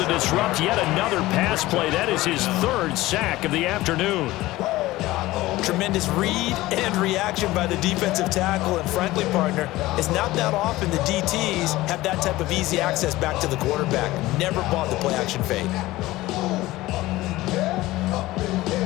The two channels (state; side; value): quieter; right; 17.9 dB